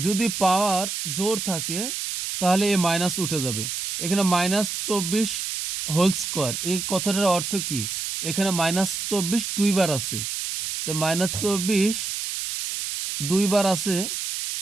পাওয়ার জোর থাকে তাহলে এ মাইনাস উঠে যাবে। এখানে মাইনাস 24 হোল স্কোয়ার, এই কথাটার অর্থ কি, এখানে মাইনাস 24 দুইবার আছে, তো মাইনাস 24 দুইবার আছে।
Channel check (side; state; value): right; noise; hiss, 4 dB below the sound